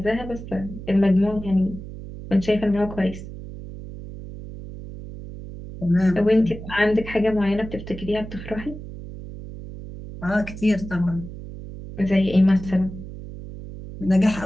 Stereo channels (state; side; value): noise; right; hum, 12 dB below the sound